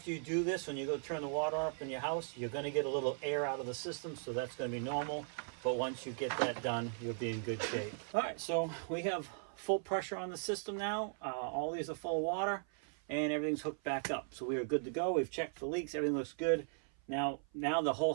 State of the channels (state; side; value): silent; left; 52 dB below the other